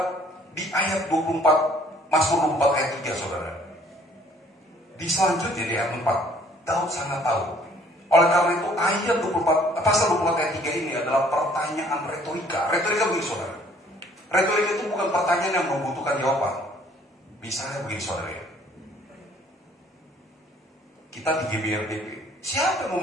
di ayat 24, Mazmur 24 ayat 3, saudara. Di selanjutnya di ayat 4, Daud sangat tahu. Oleh karena itu ayat 24, pasal 24 ayat 3 ini adalah pertanyaan retorika. Retorika begini, saudara. Retorika itu bukan pertanyaan yang membutuhkan jawaban. Misalnya begini, saudara ya. Kita di GBRDP, siapa yang mau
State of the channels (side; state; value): both; normal; correlation 0.59